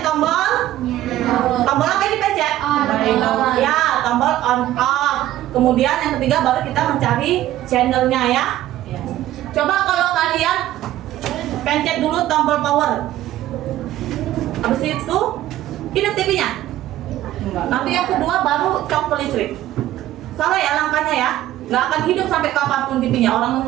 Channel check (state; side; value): quieter; left; 14.0 dB